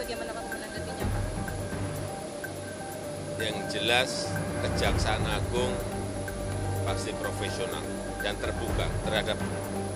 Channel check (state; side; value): identical; both; correlation 1.00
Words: Pak menanggapinya Pak? Yang jelas Kejaksaan Agung pasti profesional dan terbuka terhadap